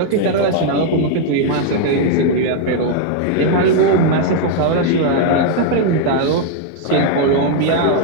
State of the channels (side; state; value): both; different; correlation 0.00